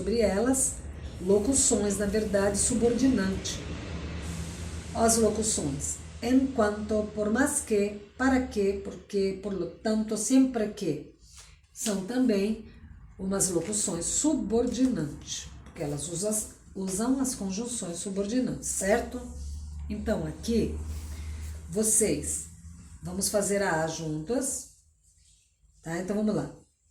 elas, locuções, na verdade, subordinante. As locuções. Enquanto, por mais que, para que, porque, por lo tanto, sempre que. São também umas locuções subordinantes, porque elas usam as conjunções subordinantes, certo? Então, aqui, vocês, vamos fazer a juntas, tá? Então, vamos lá.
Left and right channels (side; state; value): both; identical; correlation 1.00